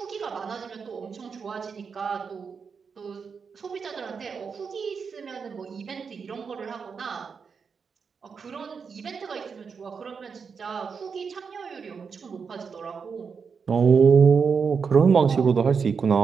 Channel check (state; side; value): quieter; left; 5.8 dB